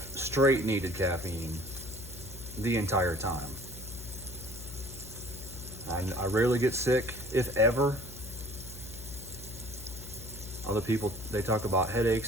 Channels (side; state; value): left; noise; hum, 13 dB below the sound